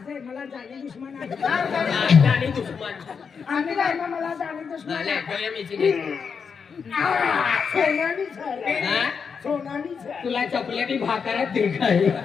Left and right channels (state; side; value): quieter; right; 6.1 dB